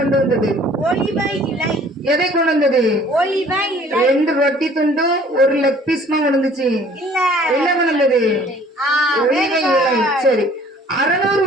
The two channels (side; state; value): both; normal; correlation 0.54